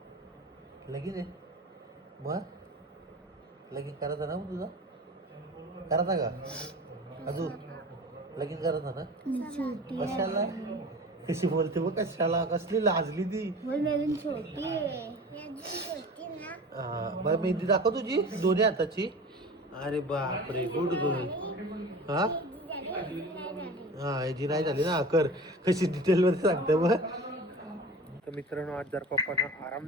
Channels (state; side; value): normal; both; correlation 0.37